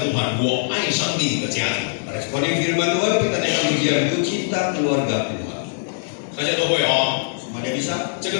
Tuhan， 我爱上帝的家庭。 Responi firman Tuhan, kita naikkan pujian itu cinta keluarga Tuhan. 大家都会哦。 Semuanya bisa? 这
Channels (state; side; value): silent; right; digital silence